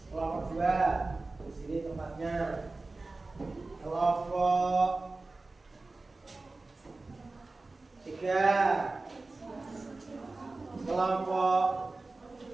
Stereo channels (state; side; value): quieter; left; 3.4 dB